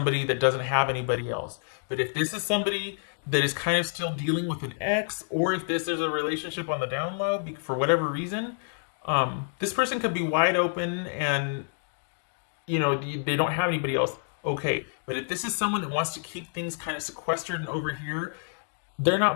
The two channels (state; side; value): silent; right; digital silence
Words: that doesn't have anybody else, but if this is somebody that is kind of still dealing with an ex, or if this is a relationship on the down low for whatever reason, this person could be wide open and, you know, they don't have anybody else. Okay, but if this is someone that wants to keep things kind of sequestered and over here, they're